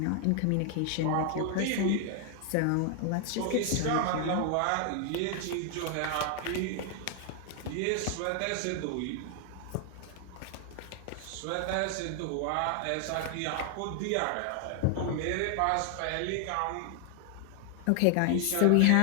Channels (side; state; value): both; different; correlation 0.00